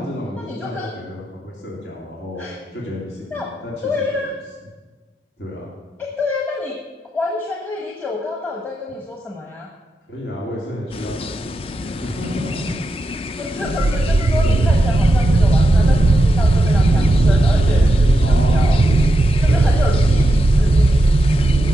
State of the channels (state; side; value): normal; both; correlation 0.87